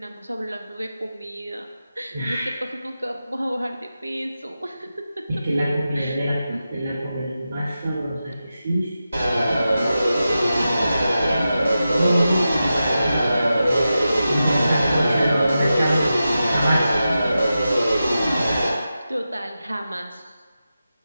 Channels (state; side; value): inverted; both; correlation -0.91